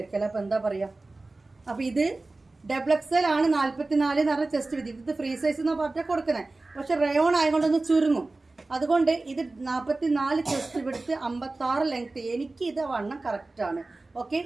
അപ്പോൾ എന്താ പറയുക. അപ്പോൾ ഇത് XXL ആണ് 44 എന്ന് പറഞ്ഞ ചെസ്റ്റ് വിധി. ഇത് ഫ്രീ സൈസ് എന്നാ പറഞ്ഞാൽ കൊടുക്കുന്നത്. പക്ഷെ റയോൺ ആയതുകൊണ്ടൊന്ന് ചുരുങ്ങും. അതുകൊണ്ട് ഇത് 44 ചെസ്റ്റ് വിടുത്ത് 56 ലെങ്ത്. എനിക്ക് ഇത് വണ്ണം കറക്റ്റാണ്. ഓക്കെ,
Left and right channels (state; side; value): quieter; left; 3.2 dB